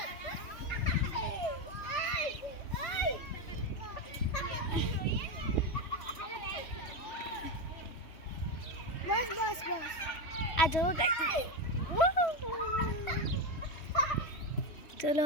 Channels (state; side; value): late; right; 3.1 ms